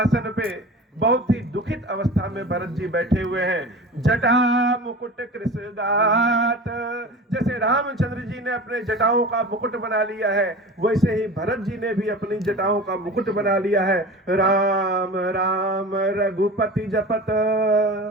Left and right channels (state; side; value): normal; both; correlation 0.35